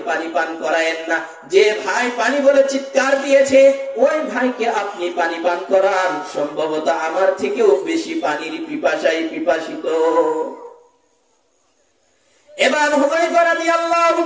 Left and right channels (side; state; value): both; identical; correlation 1.00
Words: পানি পান করায়েন না। যে ভাই পানি বলে চিৎকার দিয়েছে ওই ভাইকে আপনি পানি পান করান, সম্ভবত আমার থেকেও বেশি পানির পিপাসায় পিপাসিত। এবার হুযায়ফা রাদিয়াল্লাহু